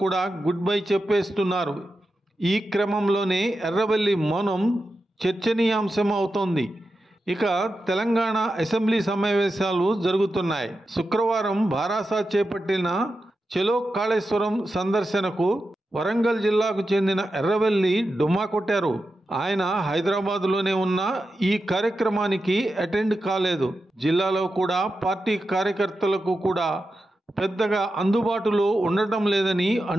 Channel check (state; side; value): normal; both; correlation 0.90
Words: కూడా గుడ్ బై చెప్పేస్తున్నారు. ఈ క్రమంలోనే ఎర్రబెల్లి మౌనం చర్చనీయాంశం అవుతోంది. ఇక తెలంగాణ అసెంబ్లీ సమావేశాలు జరుగుతున్నాయి. శుక్రవారం భారాస చేపట్టిన చలో కాళేశ్వరం సందర్శనకు వరంగల్ జిల్లాకు చెందిన ఎర్రబెల్లి డుమ్మా కొట్టారు. ఆయన హైదరాబాద్లోనే ఉన్న ఈ కార్యక్రమానికి అటెండ్ కాలేదు. జిల్లాలో కూడా పార్టీ కార్యకర్తలకు కూడా పెద్దగా అందుబాటులో ఉండటం లేదని